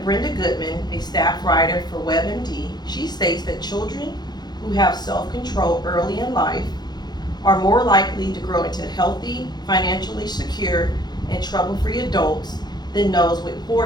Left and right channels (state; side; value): late; right; 0.20 ms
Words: Goodman, a staff writer for WebMD, she states that children who have self-control early in life are more likely to grow into healthy, financially secure, and trouble-free adults than those with